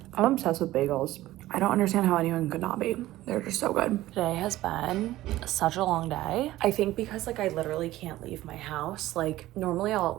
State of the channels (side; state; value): left; quieter; 15.9 dB